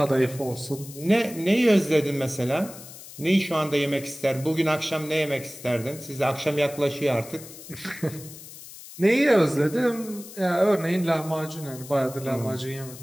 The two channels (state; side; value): noise; left; hiss, 16 dB below the sound